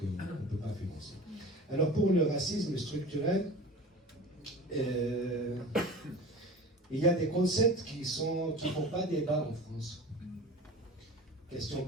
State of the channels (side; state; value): both; normal; correlation 0.36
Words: ne peut pas financer. Alors pour le racisme structurel, il y a des concepts qui ne font pas débat en France. Question